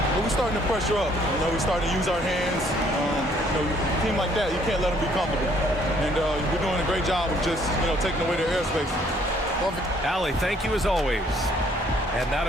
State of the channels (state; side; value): normal; both; correlation 0.63